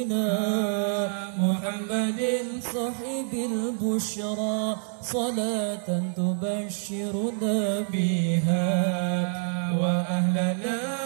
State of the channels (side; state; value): left; silent; digital silence